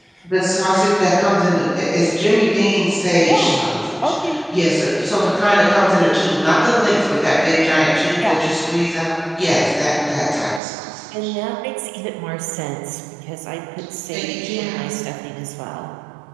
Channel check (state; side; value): drops out; left; at 10.6 s